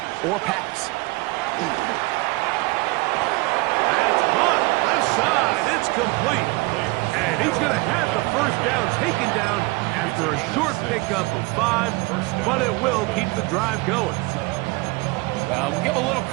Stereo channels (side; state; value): left; quieter; 24.7 dB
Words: or pass. That's caught. Left side. It's complete. And he's going to have the first down taken down after a short pickup of 5, but it will keep the drive going. Well, we'll give a little